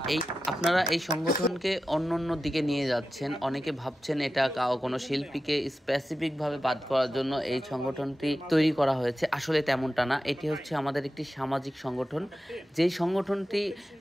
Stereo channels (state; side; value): normal; both; correlation 0.92